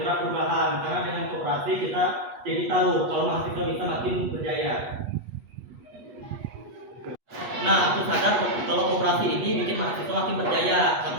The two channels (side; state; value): left; late; 8.2 ms